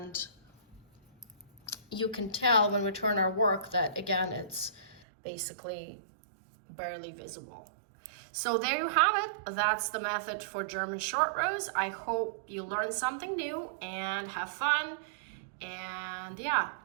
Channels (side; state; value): left; drops out; at 5.0 s